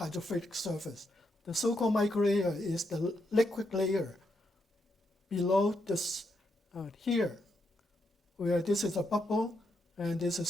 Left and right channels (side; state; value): both; normal; correlation 0.81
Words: surface, the so-called microlayer is the liquid layer below this here, where this is a bubble and there's a